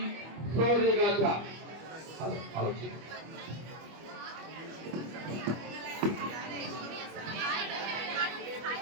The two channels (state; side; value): late; left; 25 ms